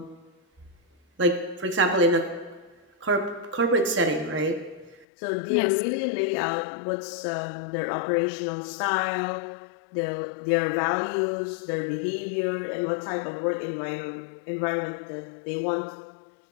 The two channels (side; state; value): right; drops out; at 5.1 s